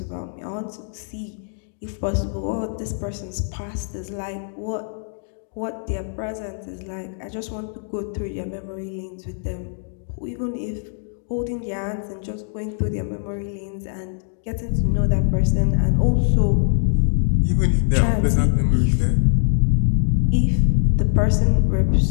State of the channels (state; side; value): silent; right; digital silence